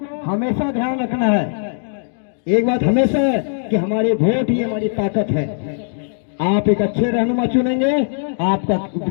हमेशा ध्यान रखना है। एक बात हमेशा है कि हमारे वोट ही हमारी ताकत है। आप एक अच्छे रहनुमा चुनेंगे, आपका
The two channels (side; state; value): right; silent; digital silence